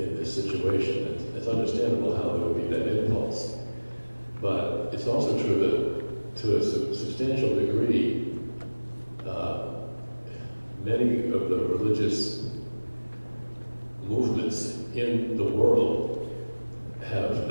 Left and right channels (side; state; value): both; inverted; correlation -1.00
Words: this situation. It's understandable how there would be that impulse. But it's also true that to a substantial degree, many of the religious movements in the world have